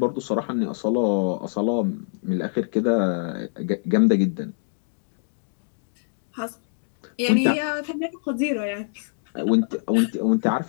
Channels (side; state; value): right; silent; digital silence